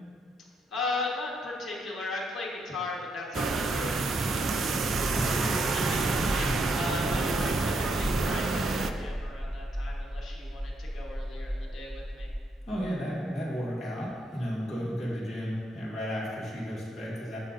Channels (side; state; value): both; normal; correlation 0.77